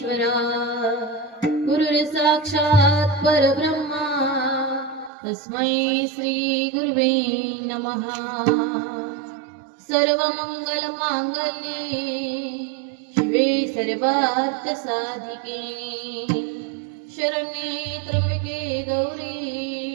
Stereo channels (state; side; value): drops out; left; at 5.1 s